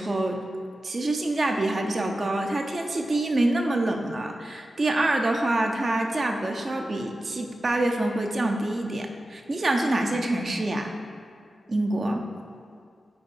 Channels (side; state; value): both; normal; correlation 0.93